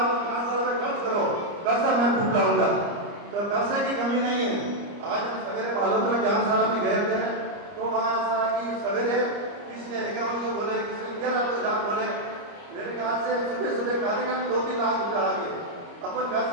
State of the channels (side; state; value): left; late; 30 ms